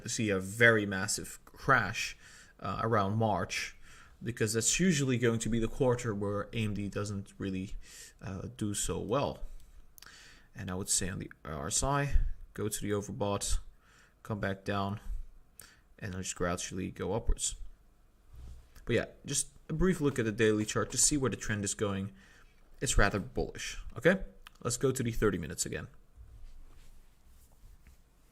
to see a very massive crash around March, because that's usually going to be the quarter where AMD doesn't really do so well. And I would say on the RSI, go to the overbought, come back down, and then just gradually go upwards. But yeah, just a brief look at the daily chart to see where the trend is going. It's rather bullish. Okay, let's go to the 30 minutes again.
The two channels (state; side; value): identical; both; correlation 1.00